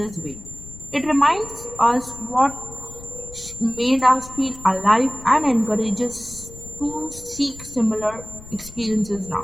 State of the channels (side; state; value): left; noise; rumble, 17 dB below the sound